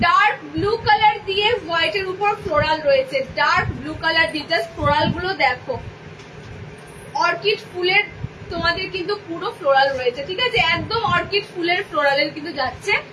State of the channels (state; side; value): identical; both; correlation 1.00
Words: ডার্ক ব্লু কালার দিয়ে হোয়াইটের উপর ফ্লোরাল রয়েছে, ডার্ক ব্লু কালার দিয়ে, জাস্ট ফ্লোরাল গুলো দেখো, অর্কিড ফুলের তোমাদের কিন্তু পুরো ফ্লোরাল রয়েছে, ঠিক আছে, একদম অর্কিড ফুলের ফ্লোরালের কিন্তু যাচ্ছে।